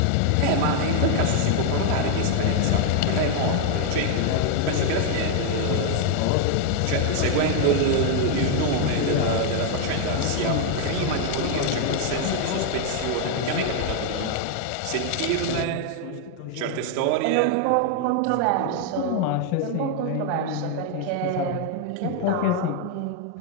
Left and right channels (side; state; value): both; different; correlation 0.00